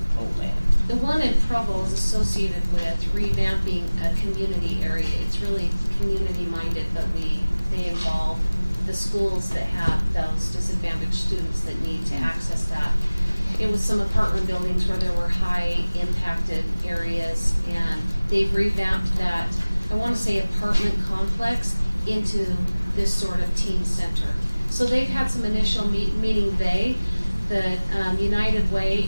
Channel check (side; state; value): both; inverted; correlation -1.00